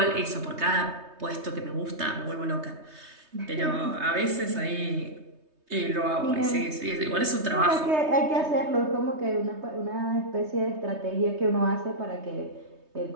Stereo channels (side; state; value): left; late; 3.2 ms